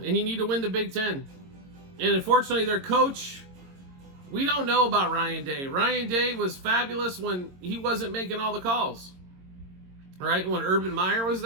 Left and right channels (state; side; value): late; left; 22 ms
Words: and you need to win the Big Ten. And unfortunately, their coach, we don't know about Ryan Day. Ryan Day was fabulous when he wasn't making all the calls. Right? When Urban Meyer was